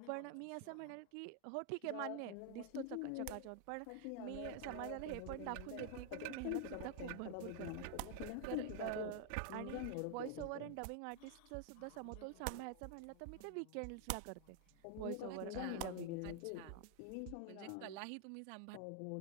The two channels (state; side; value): different; both; correlation 0.00